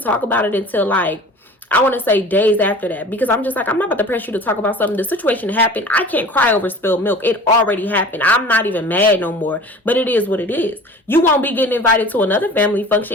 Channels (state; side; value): normal; both; correlation 0.42